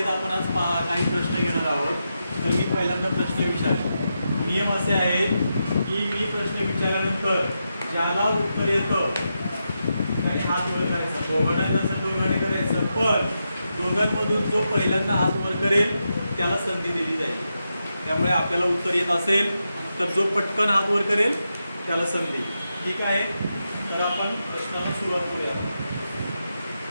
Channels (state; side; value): inverted; both; correlation -0.87